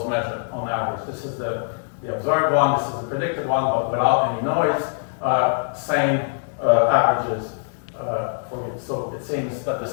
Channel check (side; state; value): right; silent; digital silence